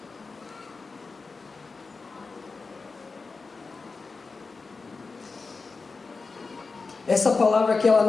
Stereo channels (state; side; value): quieter; right; 4.3 dB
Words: Essa palavra aqui, ela